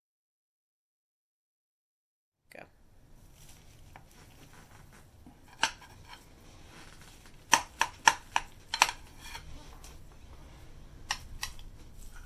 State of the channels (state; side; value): identical; both; correlation 1.00